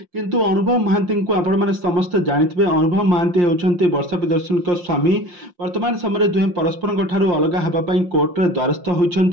କିନ୍ତୁ ଅନୁଭବ ମହାନ୍ତିଙ୍କୁ ଆପଣମାନେ ସମସ୍ତେ ଜାଣିଥିବେ ଅନୁଭବ ମହାନ୍ତି ହେଉଛନ୍ତି ବର୍ଷା ପ୍ରିୟଦର୍ଶିନୀଙ୍କ ସ୍ୱାମୀ। ବର୍ତ୍ତମାନ ସମୟରେ ଦୁହେଁ ପରସ୍ପରଙ୍କ ଠାରୁ ଅଲଗା ହେବା ପାଇଁ କୋର୍ଟରେ ଦ୍ୱାରସ୍ଥ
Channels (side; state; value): left; late; 5.7 ms